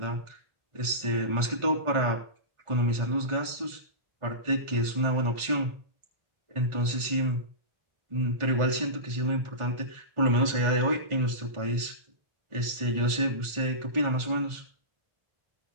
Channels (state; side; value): late; left; 1.4 ms